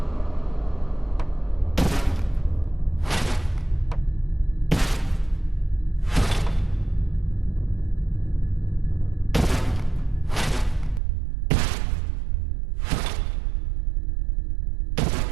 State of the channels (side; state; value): left; drops out; at 11.0 s